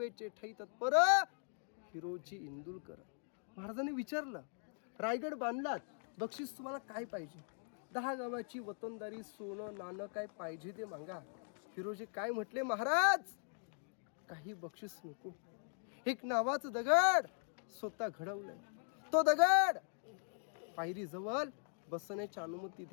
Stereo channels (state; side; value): silent; right; 51 dB below the other